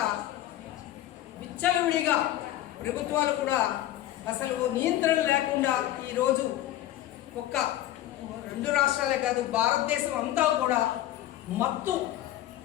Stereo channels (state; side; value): quieter; right; 13.9 dB